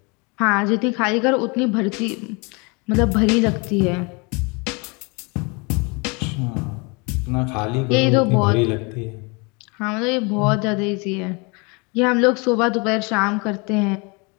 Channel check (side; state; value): right; quieter; 30.0 dB